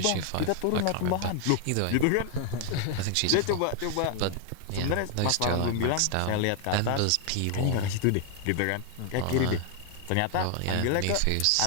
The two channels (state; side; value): different; both; correlation 0.00